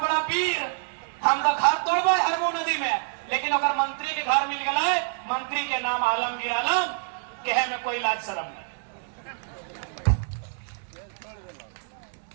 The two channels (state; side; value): silent; left; 60 dB below the other